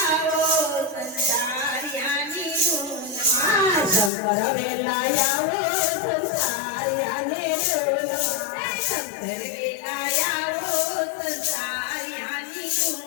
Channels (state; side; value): drops out; right; at 4.1 s